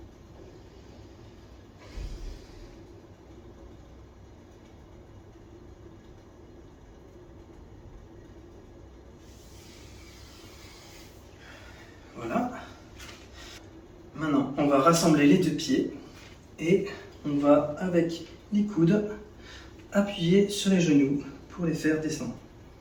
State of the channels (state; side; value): identical; both; correlation 1.00